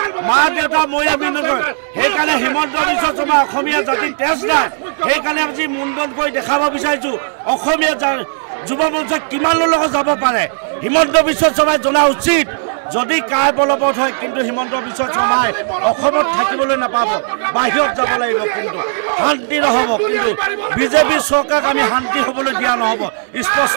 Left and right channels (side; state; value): left; silent; digital silence